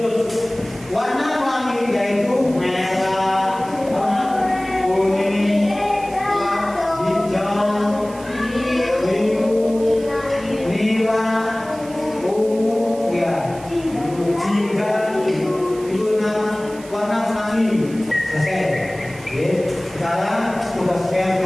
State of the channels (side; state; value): right; noise; hiss, 20 dB below the sound